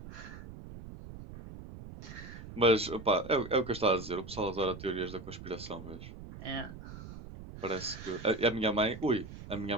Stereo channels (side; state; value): right; noise; rumble, 13 dB below the sound